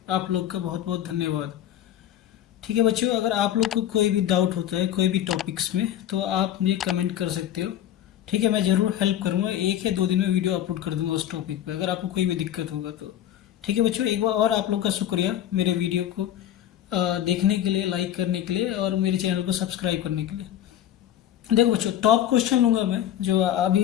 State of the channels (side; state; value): right; quieter; 11.3 dB